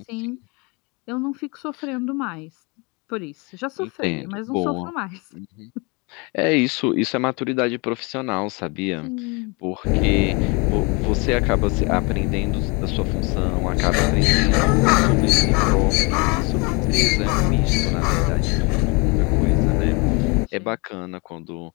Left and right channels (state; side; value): quieter; right; 29.5 dB